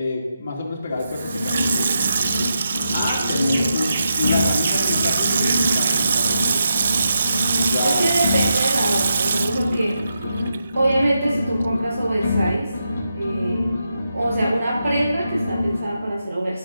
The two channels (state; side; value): inverted; both; correlation -0.85